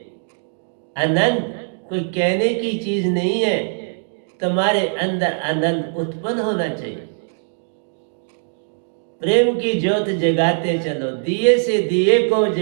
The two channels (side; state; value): left; silent; digital silence